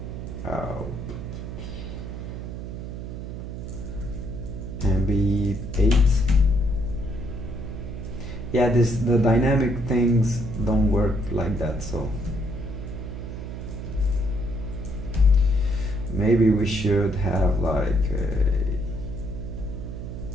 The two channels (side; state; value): right; noise; hum, 8 dB below the sound